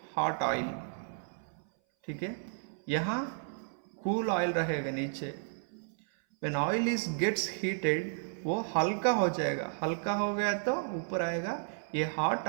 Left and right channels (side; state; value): left; silent; 56 dB below the other